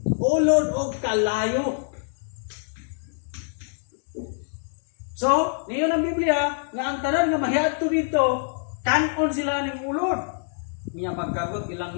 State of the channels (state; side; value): silent; right; digital silence